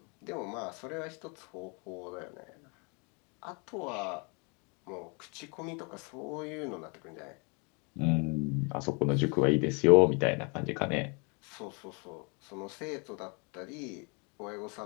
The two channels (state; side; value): quieter; right; 33.5 dB